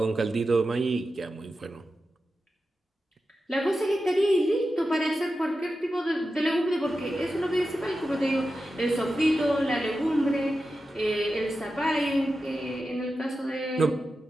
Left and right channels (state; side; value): normal; both; correlation 0.91